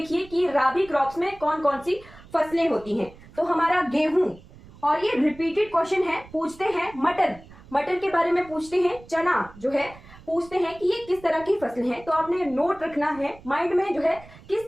कि राबी क्रॉप्स में कौन कौन सी फसलें होती हैं। तो हमारा गेहूं, और ये रिपीटेड क्वेश्चन है, पूछते हैं मटर, मटर के बारे में पूछते हैं, चना जो है पूछते हैं कि ये किस तरह की फसल है। तो आपने नोट रखना है माइंड में, जो है किस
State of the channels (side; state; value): right; noise; rumble, 21 dB below the sound